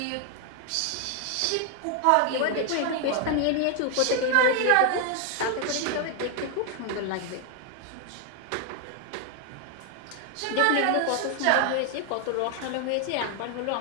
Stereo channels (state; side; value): different; both; correlation 0.00